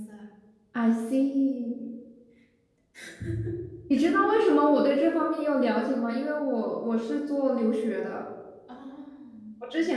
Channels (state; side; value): identical; both; correlation 1.00